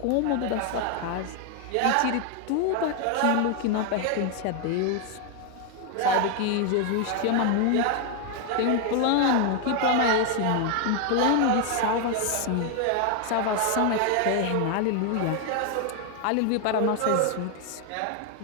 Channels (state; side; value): different; both; correlation 0.01